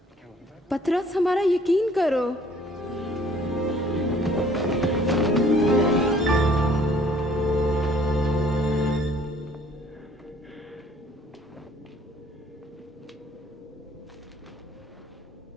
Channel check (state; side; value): normal; both; correlation 0.58